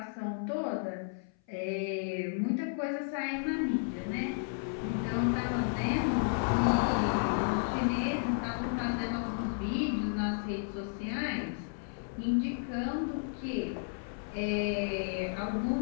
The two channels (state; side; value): silent; right; 56 dB below the other